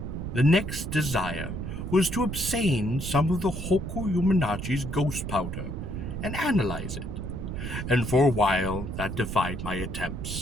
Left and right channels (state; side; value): noise; right; rumble, 5 dB below the sound